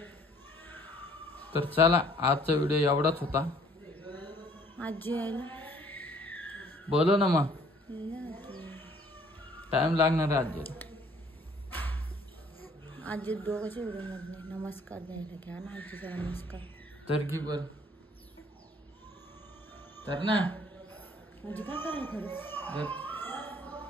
तर चला आजचा व्हिडिओ एवढाच होता. आजी यायला बोलो ना मग. टाइम लागणार आहे आजीला. आजी दोघांच्या व्हिडिओ मध्ये नमस्कार द्यायला घ्या ना. आजीचा नमस्कार तर की बर तर ना. म्हणजे काय करायला खरं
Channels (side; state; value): both; normal; correlation 0.58